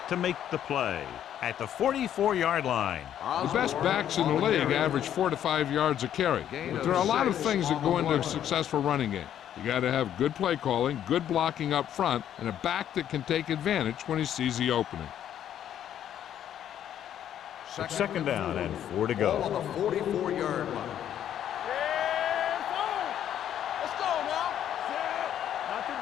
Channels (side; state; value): right; quieter; 10.4 dB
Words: to make the play at the 44-yard line. The best backs in the league average 4 to 5 yards a carry. But there are a lot of things that go into a successful running game. You got to have good play calling, good blocking up front, and a back that can take advantage when he sees the opening. Second down and 4 to Ball on go. the 44-yard line. Let's go now. Not